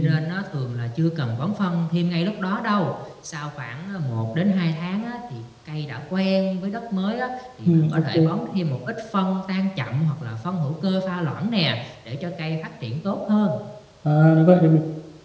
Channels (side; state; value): both; identical; correlation 1.00